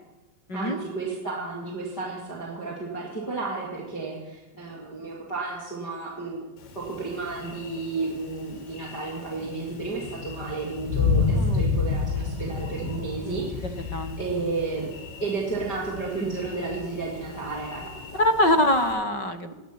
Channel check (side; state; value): right; late; 5.3 ms